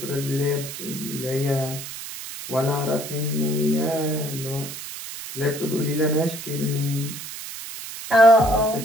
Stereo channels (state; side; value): noise; right; hiss, 10 dB below the sound